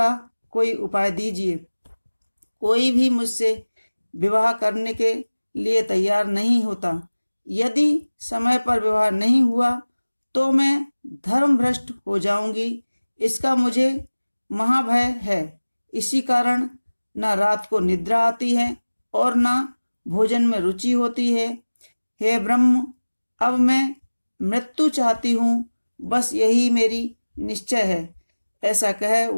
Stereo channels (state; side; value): inverted; both; correlation -1.00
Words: कोई उपाय दीजिए। कोई भी मुझसे विवाह करने के लिए तैयार नहीं होता। यदि समय पर विवाह नहीं हुआ तो मैं धर्मभ्रष्ट हो जाऊंगी। इसका मुझे महाभय है। इसी कारण न रात को निद्रा आती है और न भोजन में रुचि होती है। हे ब्रह्म, अब मैं मृत्यु चाहती हूँ, बस यही मेरी निश्चय है। ऐसा कह